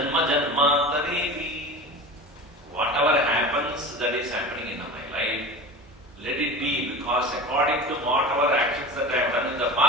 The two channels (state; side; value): normal; both; correlation 0.32